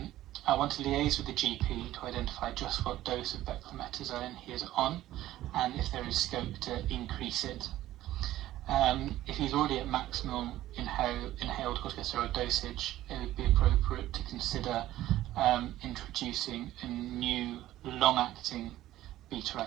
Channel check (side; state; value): left; quieter; 14.5 dB